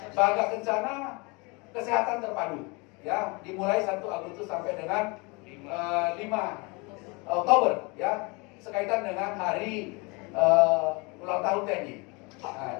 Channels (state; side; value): quieter; right; 28.5 dB